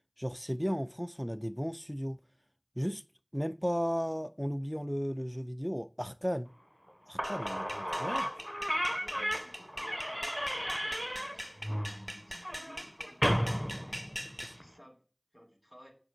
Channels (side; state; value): both; identical; correlation 1.00